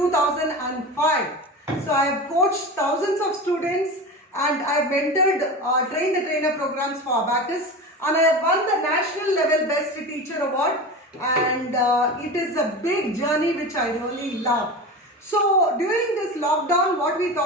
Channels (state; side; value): normal; both; correlation 0.28